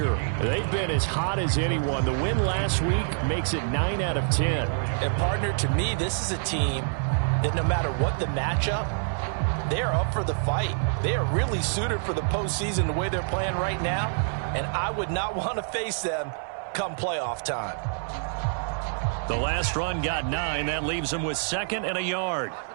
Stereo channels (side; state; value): left; silent; digital silence